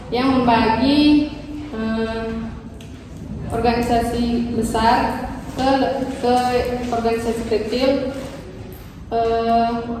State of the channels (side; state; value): both; identical; correlation 1.00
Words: yang membagi organisasi besar ke organisasi kecil